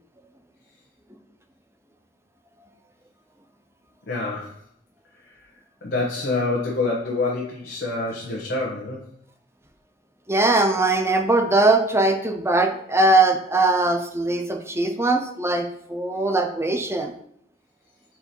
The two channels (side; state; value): both; normal; correlation 0.47